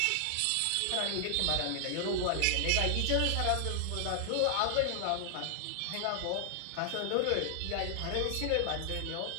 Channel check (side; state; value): both; different; correlation 0.00